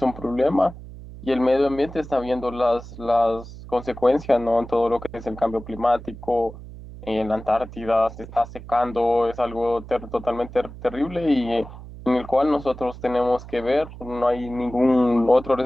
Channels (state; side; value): noise; right; hum, 15 dB below the sound